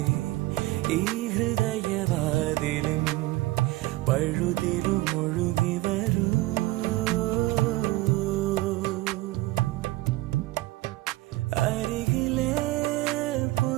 ഈ ഹൃദയവാതിലിൻ പഴുതിലും ഒഴുകി വരൂ. അരികിലെ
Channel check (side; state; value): left; quieter; 19.1 dB